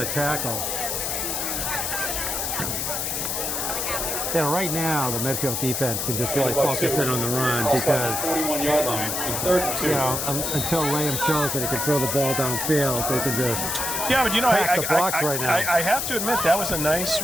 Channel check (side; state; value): left; noise; hiss, 1 dB below the sound